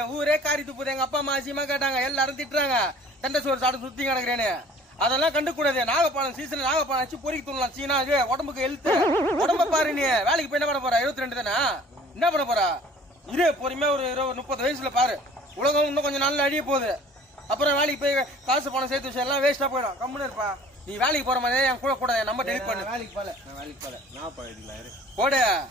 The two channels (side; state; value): both; normal; correlation 0.50